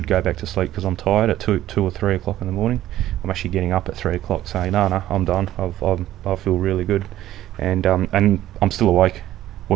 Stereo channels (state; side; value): quieter; left; 13.6 dB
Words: go back to sleep because I'm tired at 2 or 3 o'clock in the morning. I'm actually getting up at 3 o'clock saying, no, I'm done. I feel really good, and I'm still awake